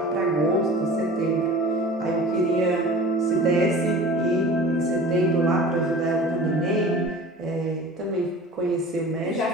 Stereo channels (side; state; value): both; normal; correlation 0.40